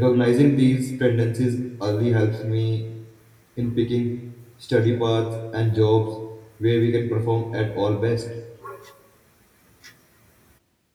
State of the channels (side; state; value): both; identical; correlation 1.00